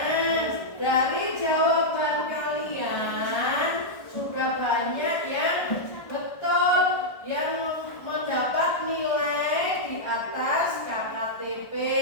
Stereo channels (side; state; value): right; late; 1.4 ms